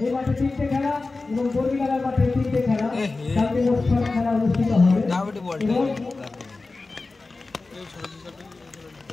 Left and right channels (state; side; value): quieter; right; 3.6 dB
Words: এই মাঠে তিনটে খেলা এবং বর্গিটাঙ্গা মাঠে তিনটে খেলা কালকে মোট 6 খেলা অনুষ্ঠিত হবে